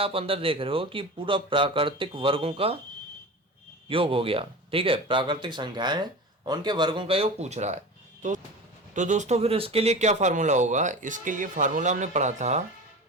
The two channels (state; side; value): normal; both; correlation 0.31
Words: अंदर देख रहे हो कि पूरा प्राकृतिक वर्गों का योग हो गया। ठीक है, प्राकृतिक संख्याएं हैं और उनके वर्गों का योग पूछ रहा है। तो दोस्तों फिर इसके लिए क्या फार्मूला होगा, इसके लिए फार्मूला हमने पढ़ा था